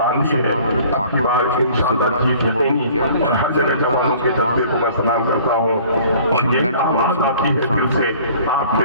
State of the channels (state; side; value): inverted; both; correlation -0.51